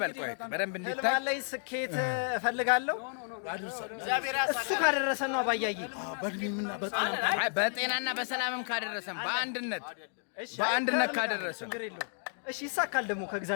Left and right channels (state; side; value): silent; right; 56 dB below the other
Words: ቆይ በደንብ እንዲታይ ላይ ስኬት እፈልጋለሁ። እሱ ካደረሰን ነው አባያይ በጤናና በሰላምም ካደረሰን በአንድነት ካደረሰን እሺ ይሳካል። ደግሞ